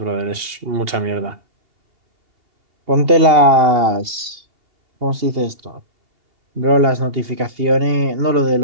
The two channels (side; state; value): left; late; 2.8 ms